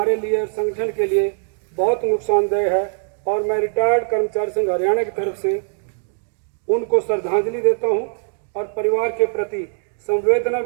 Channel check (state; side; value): silent; left; digital silence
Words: लिए, संगठन के लिए बहुत नुकसानदेह है और मैं रिटायर्ड कर्मचारी संघ हरियाणा की तरफ से उनको श्रद्धांजलि देता हूं और परिवार के प्रति संवेदना